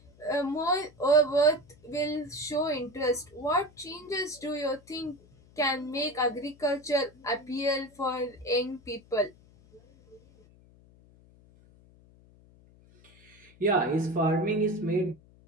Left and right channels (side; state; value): left; noise; hum, 27 dB below the sound